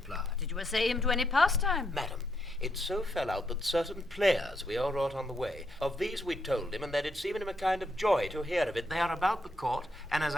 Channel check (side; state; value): both; normal; correlation 0.78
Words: Did you essay him to any pastime? Madam, it so fell out that certain players we all wrought on the way, of these we told him, and that it's even him a kind of joy to hear of it. They are about the court, and as